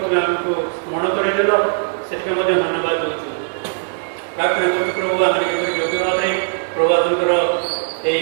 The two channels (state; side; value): silent; left; 66 dB below the other